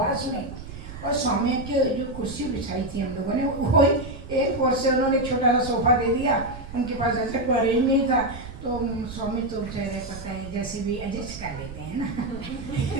में, और स्वामी के जो कुर्सी बिछाई थी हम लोगों ने, वो एयरपोर्ट से उन्होंने छोटा सा सोफा दे दिया, उनके पास ऐसा कोई अरेंज नहीं था, तो स्वामी तो बेचारे पता है जैसे भी एडजस्ट कर लेते हैं ना।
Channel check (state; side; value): noise; right; rumble, 13 dB below the sound